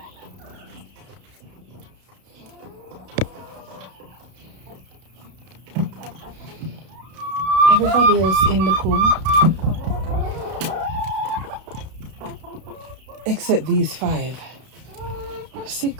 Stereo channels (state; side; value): late; left; 32 ms